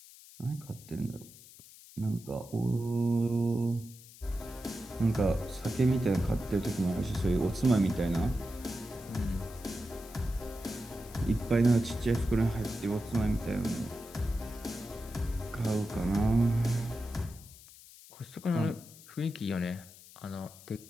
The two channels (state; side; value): noise; left; hiss, 20 dB below the sound